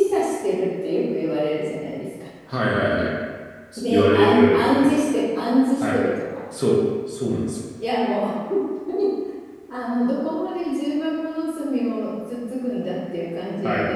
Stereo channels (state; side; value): identical; both; correlation 1.00